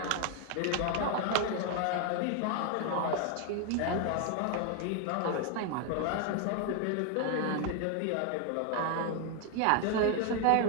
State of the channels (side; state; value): both; different; correlation 0.01